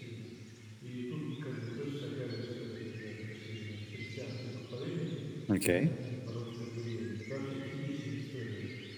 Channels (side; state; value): both; identical; correlation 1.00